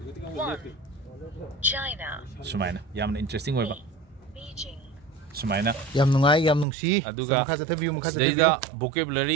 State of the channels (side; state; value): left; drops out; at 6.7 s